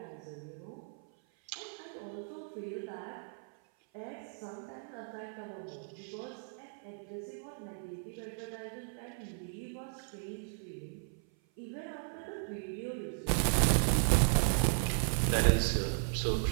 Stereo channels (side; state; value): left; silent; 54 dB below the other